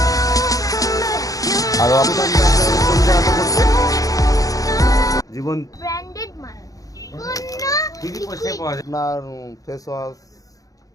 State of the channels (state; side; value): late; right; 0.17 ms